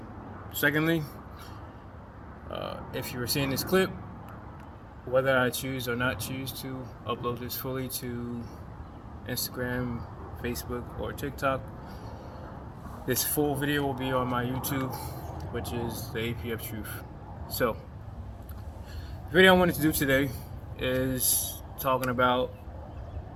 Secondly, if you were seeing this clip, whether I choose or not choose to upload this fully to Instagram, Facebook, or TikTok, this full video will be on my YouTube, which is the TheAPFTruth. So, the video I wanted to do today is talking about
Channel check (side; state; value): both; identical; correlation 1.00